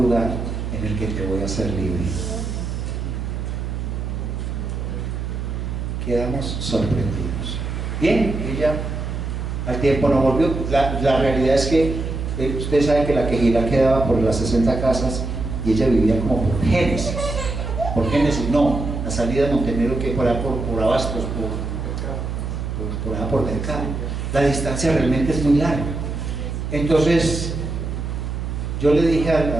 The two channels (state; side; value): noise; right; hum, 4 dB below the sound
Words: lugar en el que te voy a hacer libre. Quedamos sorprendidos. Bien, ella al tiempo no volvió. La realidad es que ustedes saben que la Quejilá quedaba por las 60 casas y ella vivía como por Génesis. Por Génesis, no, la salida de Montenegro que por Abastos, por allá por Mercado. La distancia realmente es muy larga. Entonces, yo le dije